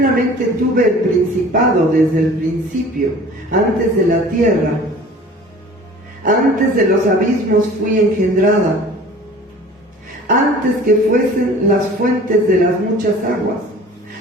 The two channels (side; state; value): both; normal; correlation 0.45